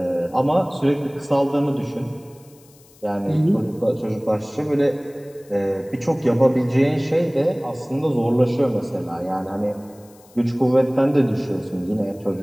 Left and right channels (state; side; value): noise; left; hiss, 28 dB below the sound